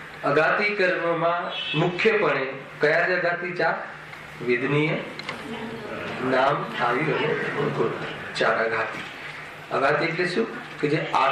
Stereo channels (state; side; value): identical; both; correlation 1.00